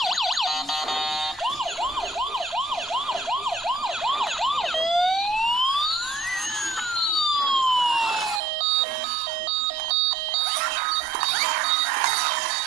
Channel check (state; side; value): drops out; left; at 8.4 s